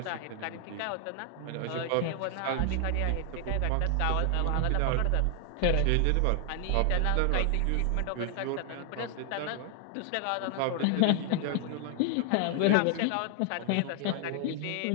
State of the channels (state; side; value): different; both; correlation 0.00